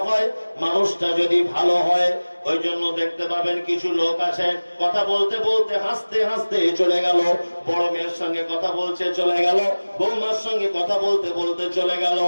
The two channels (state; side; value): inverted; both; correlation -1.00